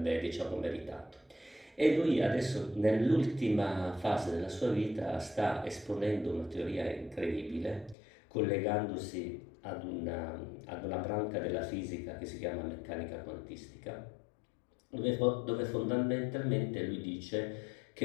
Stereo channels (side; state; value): right; drops out; at 8.0 s